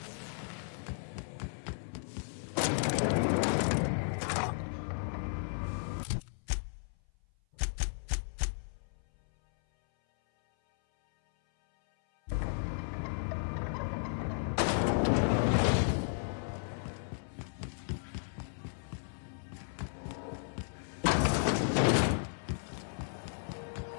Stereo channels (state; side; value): silent; right; 55 dB below the other